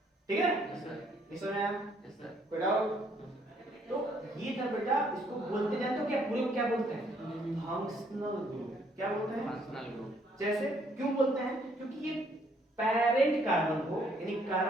ठीक है। Yes sir. इसमें आया यस सर। कोई डाउट। तो ये था बेटा, इसको बोलते जानते हो क्या, पूरे को क्या बोलते हैं, फंक्शनल ग्रुप। क्या बोलते हैं, फंक्शनल ग्रुप। जैसे क्यों बोलते हैं, क्योंकि ये पेरेंट कार्बन को, यानी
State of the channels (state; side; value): normal; both; correlation 0.67